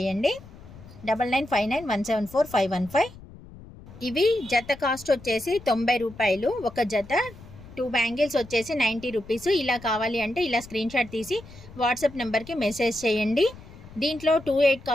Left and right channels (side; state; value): left; noise; rumble, 18 dB below the sound